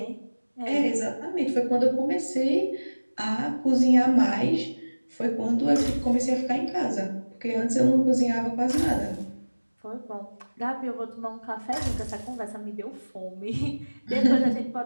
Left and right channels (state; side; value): inverted; both; correlation -1.00